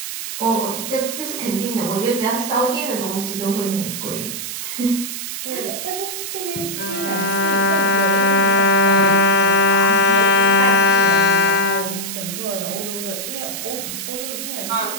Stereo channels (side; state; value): right; noise; hiss, 6 dB below the sound